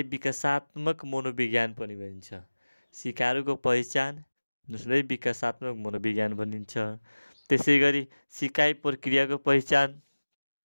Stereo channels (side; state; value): both; inverted; correlation -1.00